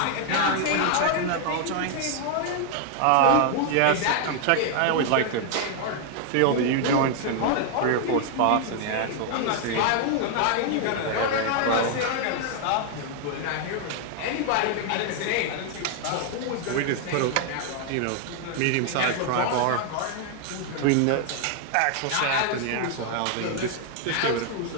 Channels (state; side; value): different; both; correlation 0.00